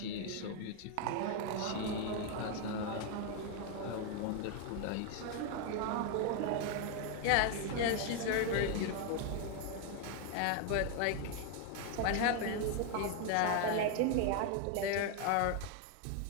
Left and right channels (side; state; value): both; different; correlation 0.01